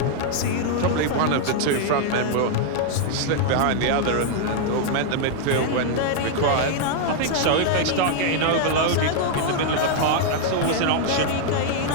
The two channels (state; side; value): different; both; correlation 0.00